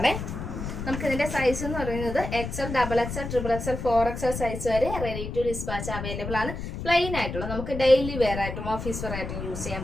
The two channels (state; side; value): noise; left; rumble, 6 dB below the sound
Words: നമുക്ക് ഇതിന്റെ സൈസ് എന്ന് പറയുന്നത് XL, XXL, XXL, 4XL size വരെ റെഡി ടു ഡിസ്പാച്ച് അവൈലബിൾ ആണ്. പ്ലെയിൻ ആയിട്ടുള്ള നമുക്ക് ഡെയിലി വെയർ ആയിട്ടും ഓഫീസ് വെയർ ആയിട്ടും യൂസ് ചെയ്യാൻ